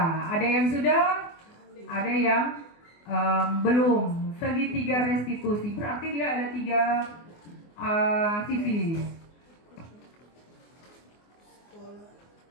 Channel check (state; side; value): late; right; 24 ms